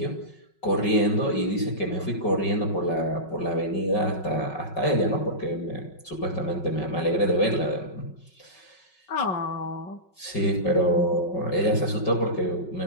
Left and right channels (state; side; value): late; right; 5.4 ms